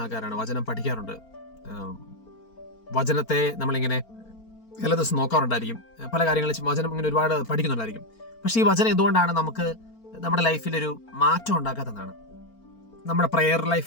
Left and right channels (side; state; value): right; late; 4.4 ms